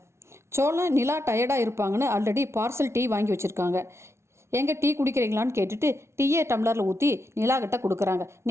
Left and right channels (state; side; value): late; left; 0.13 ms